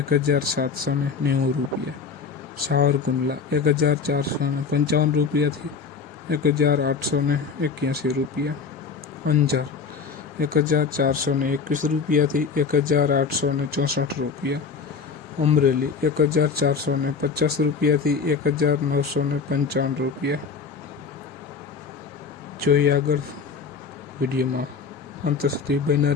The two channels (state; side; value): quieter; right; 5.3 dB